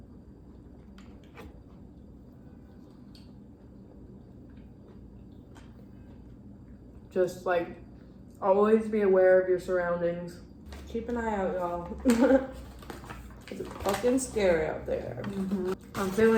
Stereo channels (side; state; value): both; identical; correlation 1.00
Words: Just like always be aware of your surroundings. Keep an eye out, y'all. It's fucking scary out there. I'm